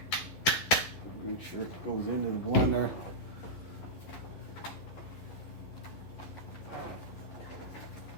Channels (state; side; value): late; right; 11 ms